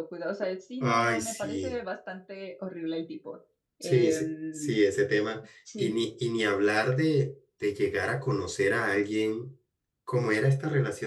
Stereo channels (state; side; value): identical; both; correlation 1.00